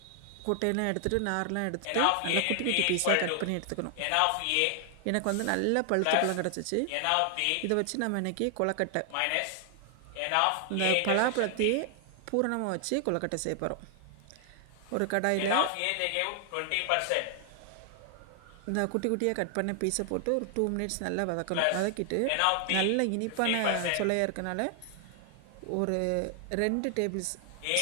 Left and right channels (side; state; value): both; different; correlation 0.00